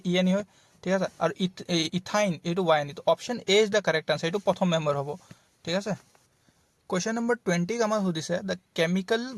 ENE হয় ঠিক আছে আৰু ইথাইন এটো YNE তো option A is the correct answer এটো প্ৰথম মেম্বাৰ হ'ব ঠিক আছে क्वेश्चन नंबर 20 আমাক সুধিছে the chemical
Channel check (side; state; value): both; identical; correlation 1.00